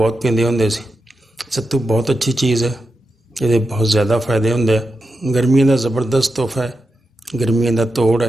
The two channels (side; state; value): both; normal; correlation 0.88